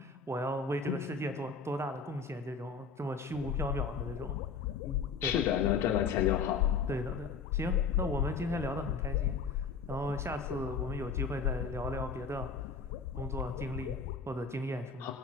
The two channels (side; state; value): right; quieter; 5.3 dB